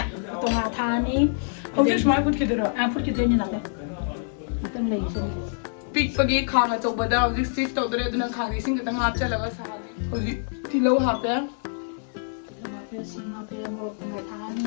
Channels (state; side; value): silent; right; digital silence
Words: तोंगा थानी हौजे स्माय फुट खिदरा फुट खिदोइनी नाते मतम लेइसे पिकपगी खांग अचौबदा हौजिक सिफ तौदरे अदुना खांगी सिंग खतंग हापचलगा साने हौजिक तिलौ हापे सिंग हापे मोरक थानी